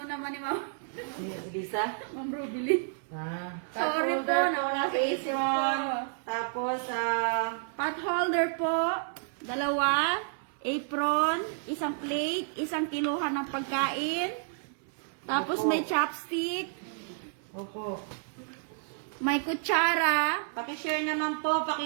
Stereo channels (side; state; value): left; silent; 56 dB below the other